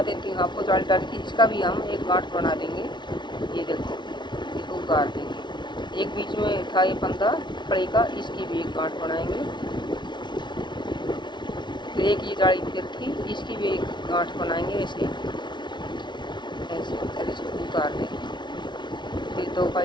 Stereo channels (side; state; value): right; late; 0.22 ms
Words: देती हूँ आपको, जाली डाली थी, इसका भी हम एक गांठ बना देंगे। ये देखो, इसको उतार देंगे। एक बीच में था ये फंदा फड़ी का, इसकी भी एक गांठ बनाएंगे। फिर एक ये जाली फिर थी, इसकी भी एक गांठ बनाएंगे ऐसे ऐसे, और इसको उतार देंगे। फिर दो का